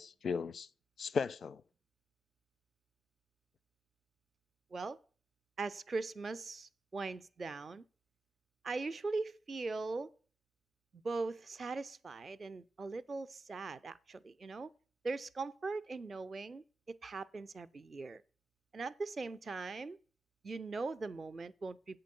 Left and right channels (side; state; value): both; normal; correlation 0.89